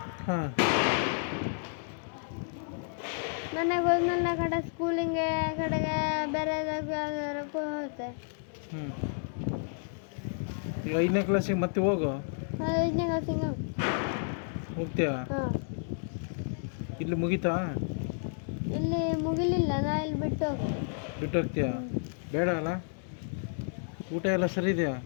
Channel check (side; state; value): right; silent; digital silence